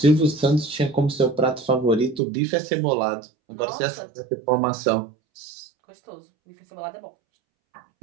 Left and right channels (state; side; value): drops out; left; at 2.2 s